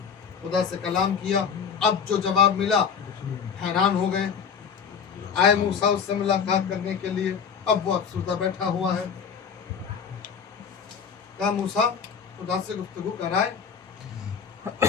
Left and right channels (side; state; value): right; quieter; 6.7 dB